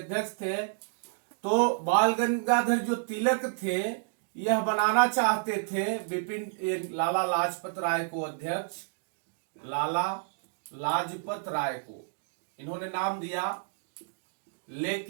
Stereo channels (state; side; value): silent; left; digital silence